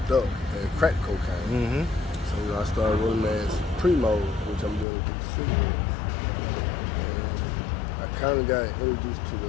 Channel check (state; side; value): drops out; right; at 4.9 s